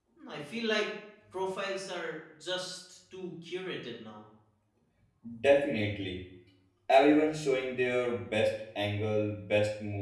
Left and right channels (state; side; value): identical; both; correlation 1.00